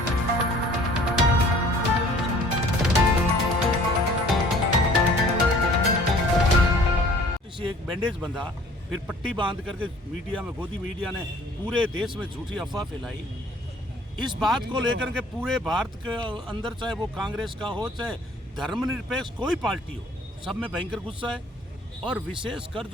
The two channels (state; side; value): normal; both; correlation 0.52